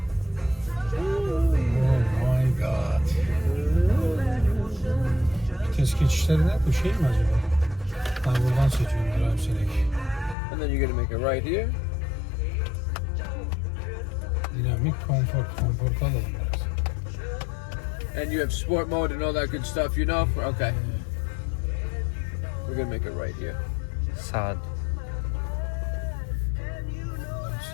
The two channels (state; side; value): drops out; right; at 10.4 s